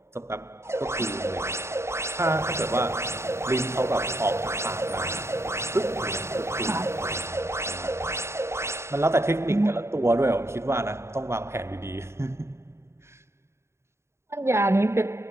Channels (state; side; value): late; left; 0.13 ms